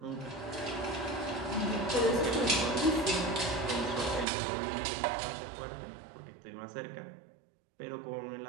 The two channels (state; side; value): drops out; left; at 4.2 s